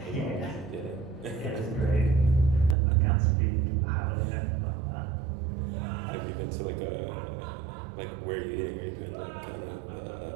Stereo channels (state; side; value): drops out; left; at 2.8 s